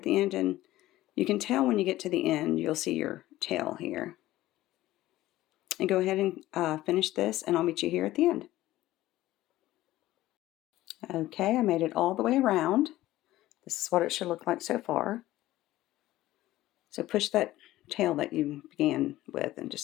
the end. And you can tell when you get to the end, you'll see your tail here. And go ahead and finish this, and I'll meet you here at the end. Okay, I made it all the way around. This is what it should look like so far. So push that tail that you began with and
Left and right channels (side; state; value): right; quieter; 15.9 dB